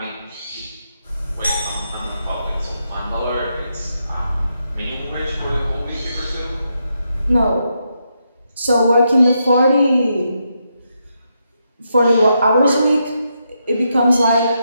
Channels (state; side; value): inverted; both; correlation -0.82